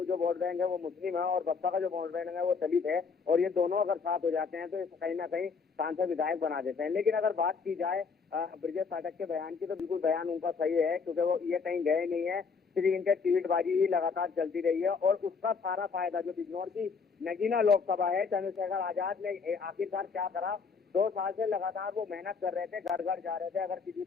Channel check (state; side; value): quieter; right; 5.3 dB